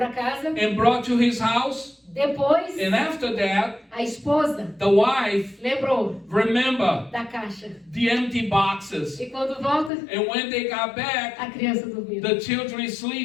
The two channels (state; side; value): drops out; right; at 9.9 s